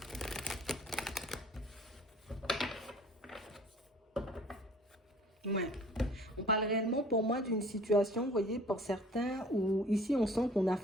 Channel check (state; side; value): normal; both; correlation 0.50